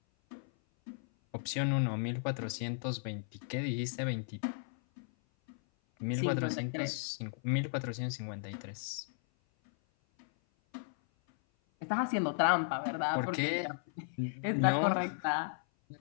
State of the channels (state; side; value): silent; right; 54 dB below the other